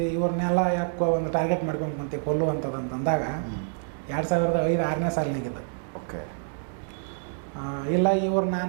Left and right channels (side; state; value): left; silent; digital silence